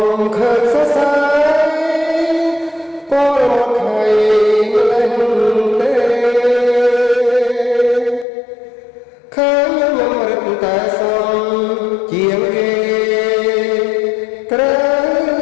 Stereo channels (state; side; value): drops out; right; at 8.2 s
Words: មឃើញសរសៃពលមកខៃម្លេះទេឃើញខ្ញុំរឹតតែសំជាងគេត្រូវ